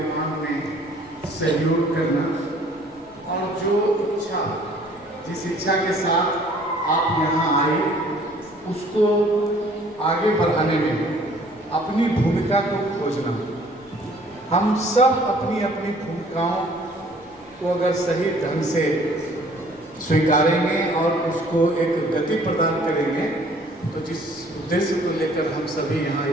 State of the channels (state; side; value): noise; left; rumble, 29 dB below the sound